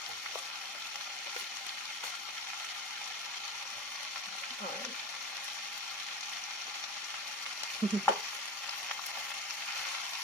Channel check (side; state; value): both; normal; correlation 0.27